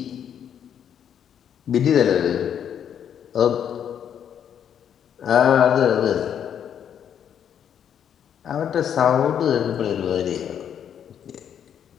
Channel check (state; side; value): quieter; right; 8.9 dB